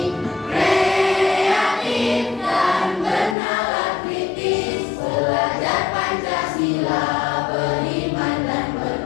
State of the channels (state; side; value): drops out; right; at 3.4 s